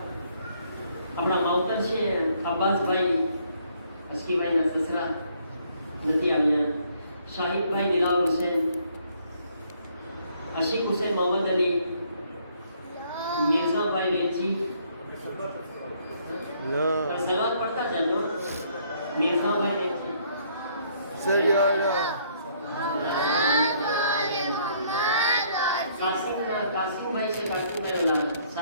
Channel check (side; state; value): both; inverted; correlation -0.66